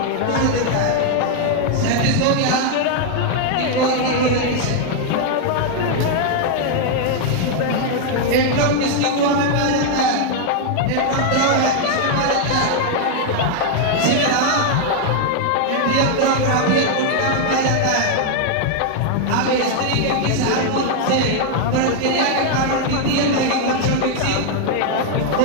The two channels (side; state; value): both; different; correlation 0.00